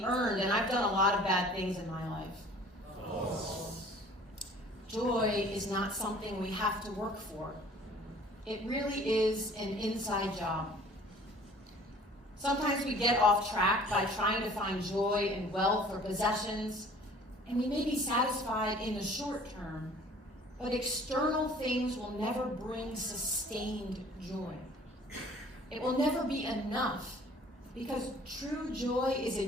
earned, and I've done a lot of bad things in my life. Joy is not something we have to work for. It really is an inside job. Sometimes we get off track by trying to find joy in wealth or possessions, and we may be satisfied in the short term, but external things will never bring sustained joy. It will never be enough because true joy is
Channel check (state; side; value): normal; both; correlation 0.50